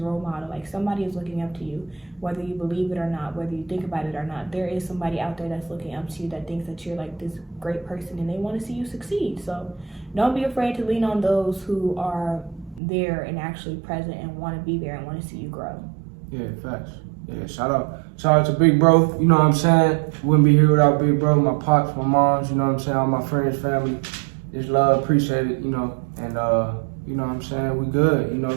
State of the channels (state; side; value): drops out; left; at 12.8 s